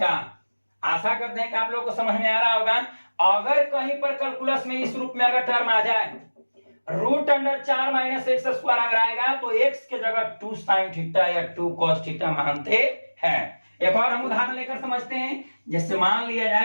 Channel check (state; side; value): inverted; both; correlation -1.00